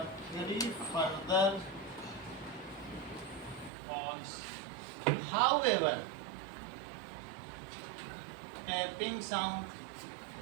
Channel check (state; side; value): drops out; left; at 3.7 s